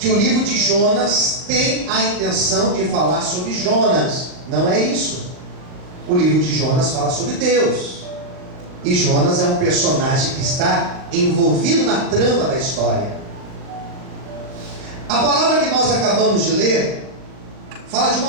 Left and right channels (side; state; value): left; late; 39 ms